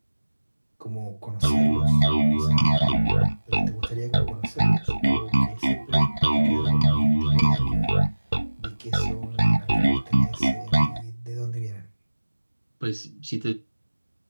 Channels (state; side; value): inverted; both; correlation -1.00